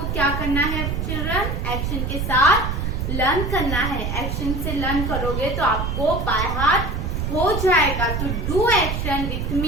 क्या करना है children? Action के साथ learn करना है. Action से learn करोगे तो आपको बाय हार्ट हो जाएगा. तो do action with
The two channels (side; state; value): right; noise; rumble, 2 dB below the sound